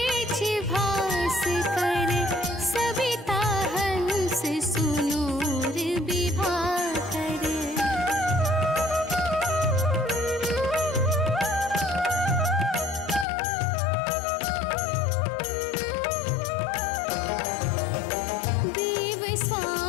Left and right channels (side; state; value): right; drops out; at 13.2 s